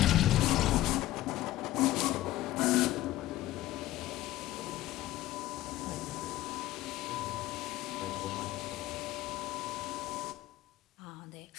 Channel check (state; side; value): quieter; right; 15.4 dB